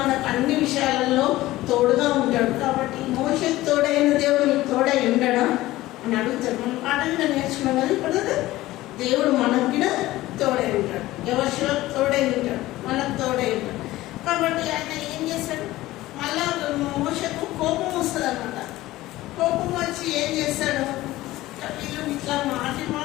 అన్ని విషయాలలో తోడుగా ఉంటాడు. కాబట్టి మోషేకు తోడైన దేవుడు నీకు తోడై ఉండడా అని అడుగుతాడు. మనం పాట కూడా నేర్చుకున్నాం కదా. ఇప్పుడు దేవుడు మనకు కూడా తోడై ఉంటాడు. ఎవరిలో తోడై ఉంటాడు, మనకు తోడై ఉంటాడు. కాబట్టి ఆయన ఏం చేస్తాడు? మళ్ళా మోషేకు కోపం వస్తుంది అన్నమాట. కోపం వచ్చి ఏం చేస్తాడు? వీళ్ళు ఇట్లా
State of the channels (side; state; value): right; quieter; 17.0 dB